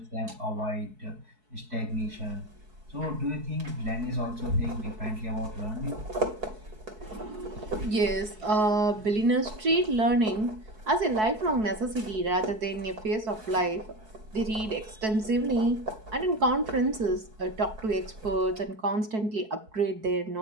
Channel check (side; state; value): left; late; 4.6 ms